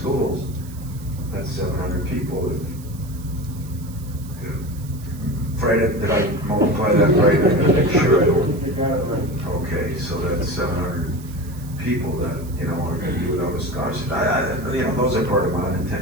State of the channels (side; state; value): right; noise; hiss, 21 dB below the sound